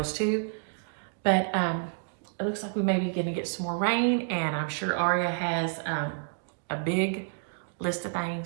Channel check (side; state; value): left; silent; 58 dB below the other